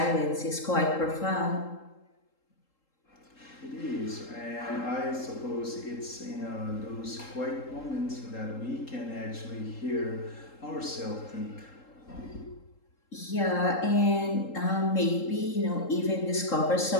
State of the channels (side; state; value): right; late; 3.8 ms